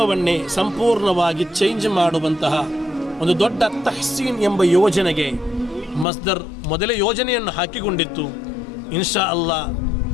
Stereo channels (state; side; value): drops out; right; at 6.1 s